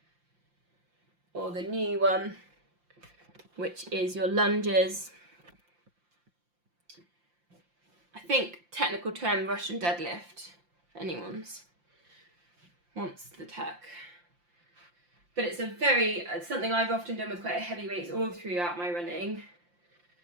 Or the new one, which is your lunges. I think technical term Russian deadlift, if anyone's wants the tech. But it's it's something I've often done with quite heavy weights all throughout my running.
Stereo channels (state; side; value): late; left; 5.7 ms